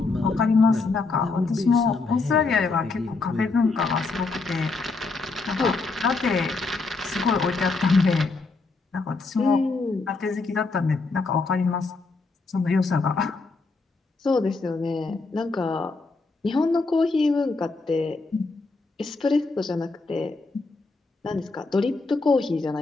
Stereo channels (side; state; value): right; quieter; 3.8 dB